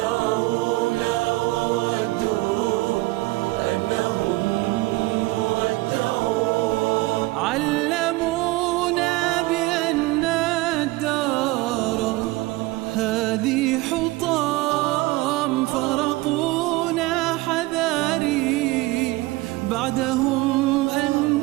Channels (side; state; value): left; quieter; 20.4 dB